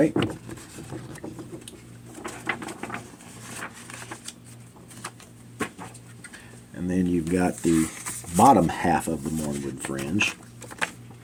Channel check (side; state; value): both; identical; correlation 1.00